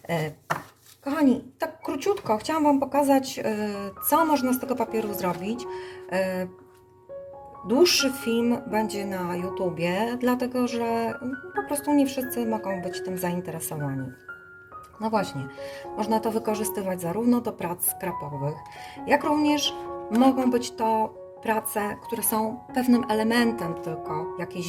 Kochani, tak króciutko chciałam Wam pokazać, co można z tego papieru zrobić. Dłuższy film będzie na YouTubie, dlatego że po prostu nie wszyscy mogą być tym zainteresowani. No właśnie, można to wykorzystywać zarówno do prac skrapowych, jak również mogą być to prace, które są pewnym elementem tylko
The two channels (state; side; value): identical; both; correlation 1.00